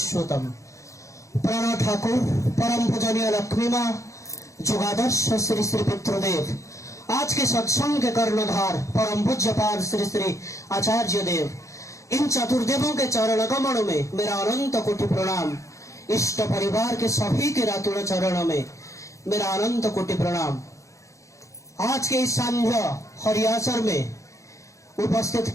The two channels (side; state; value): right; late; 0.15 ms